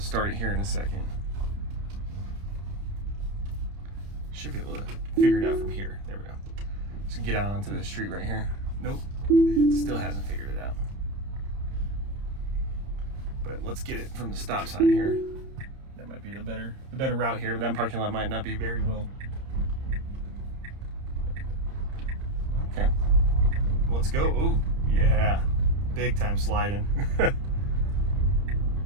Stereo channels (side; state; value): left; late; 30 ms